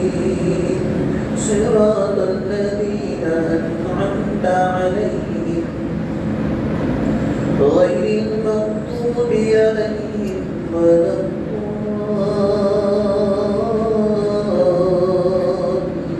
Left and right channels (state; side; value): identical; both; correlation 1.00